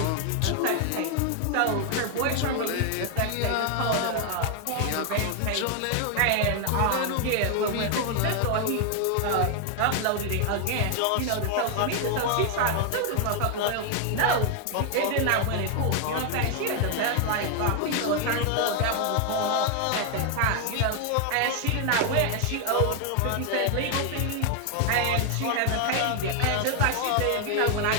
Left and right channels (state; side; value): different; both; correlation 0.00